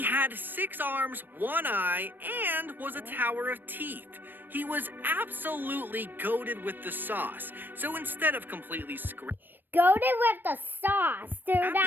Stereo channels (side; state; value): left; late; 0.093 ms